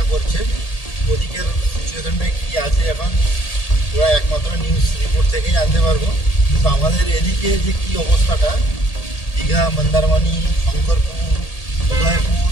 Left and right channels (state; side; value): late; right; 1.8 ms